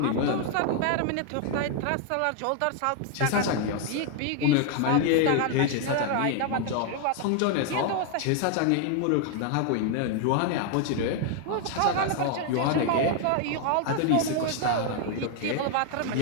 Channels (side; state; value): both; different; correlation 0.00